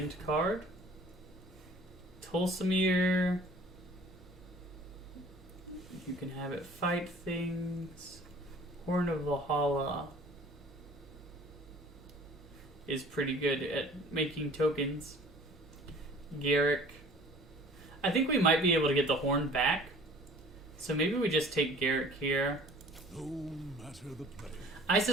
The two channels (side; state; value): both; normal; correlation 0.50